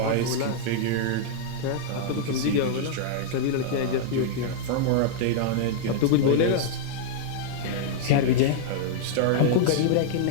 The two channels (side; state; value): both; different; correlation -0.01